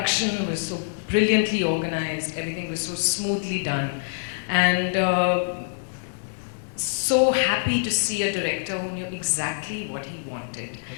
was so brilliantly organized, everything was so smoothly done. And so happy to see a director who knew exactly what he wanted.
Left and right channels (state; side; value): silent; right; digital silence